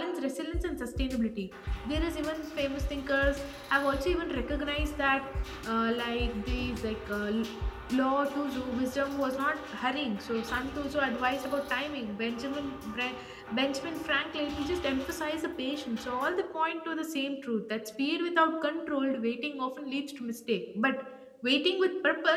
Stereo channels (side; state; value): both; identical; correlation 1.00